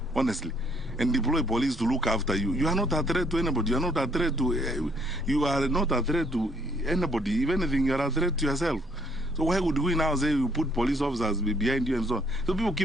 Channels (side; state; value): both; normal; correlation 0.66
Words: honestly, and deploy police to look after you? You are not a threat to anybody. You are not a threat to anybody. If anything, you are a threat to yourself. So why would we now say you put police officers behind you and so on? So people